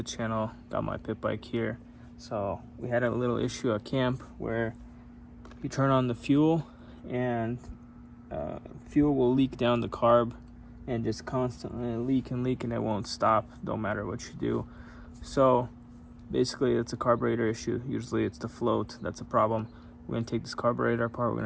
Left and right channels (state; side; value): identical; both; correlation 1.00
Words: channel. Got my pit bike here. So we had a little issue at camp where you turn on the fuel and fuel will leak down the carb and just constantly leak and it won't stop, no matter what you do. So basically it's a carburetor issue. Usually it's the float that's a problem. We're going to take this carburetor apart, we're